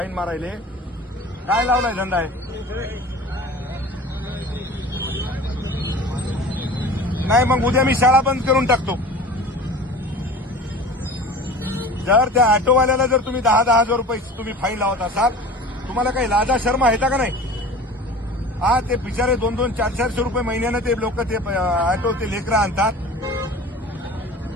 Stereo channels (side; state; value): both; normal; correlation 0.39